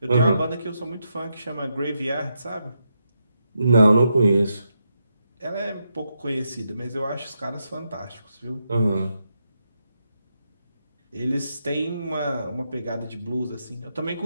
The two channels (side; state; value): both; inverted; correlation -0.83